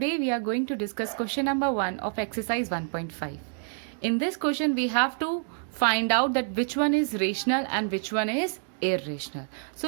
we are going to discuss question number 1 of exercise 1.5. In this question we have to find out that which one is rational and which one is irrational. So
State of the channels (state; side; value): silent; left; 55 dB below the other